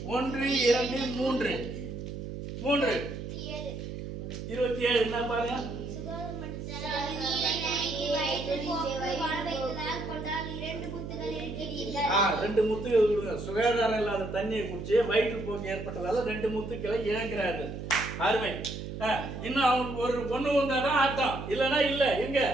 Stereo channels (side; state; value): right; noise; hum, 7 dB below the sound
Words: 1 2 3 27 என்ன பாருங்க. நீரை நனைத்து வயிற்று போக்கு வாழ வைத்ததால் கொண்டால் 2 முத்துகள் இழக்கிறீர்கள். 2 முத்துக்கள் கொடுங்க. சுகாதாரம் இல்லாத தண்ணியை குடிச்சு வயிற்று போக்கு ஏற்பட்டதால 2 முத்துக்களை இழக்கிறார்கள். அருமை. இன்னும் அவங்க ஒரு ஒண்ணு வந்தாதான் ஆட்டம், இல்லைன்னா இல்ல. எங்க